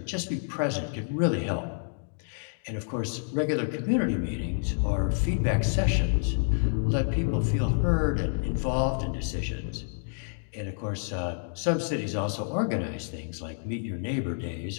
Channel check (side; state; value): right; silent; digital silence